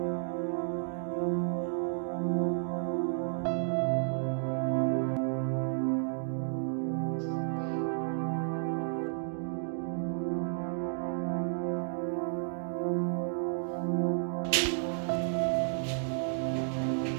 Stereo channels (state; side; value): silent; left; digital silence